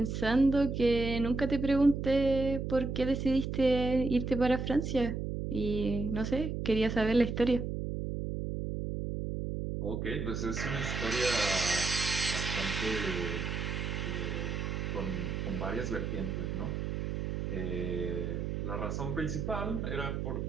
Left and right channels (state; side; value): noise; right; hum, 3 dB below the sound